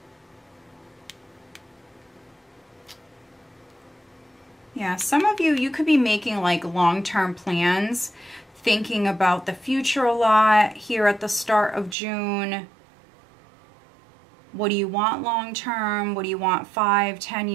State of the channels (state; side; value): drops out; left; at 12.0 s